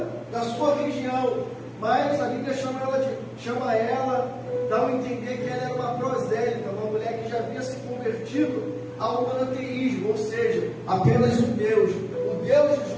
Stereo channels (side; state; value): both; identical; correlation 1.00